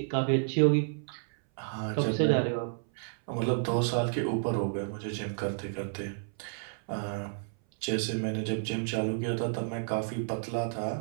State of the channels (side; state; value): left; silent; 57 dB below the other